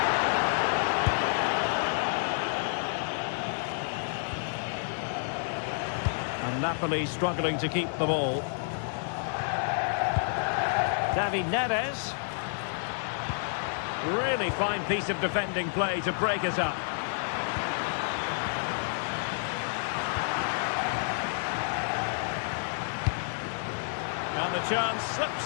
And Napoli struggling to keep the ball. David Neres. Really fine piece of defending play to break us up. And the chance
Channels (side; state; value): right; silent; digital silence